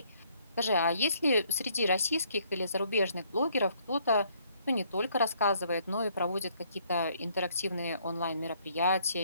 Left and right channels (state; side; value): inverted; both; correlation -0.66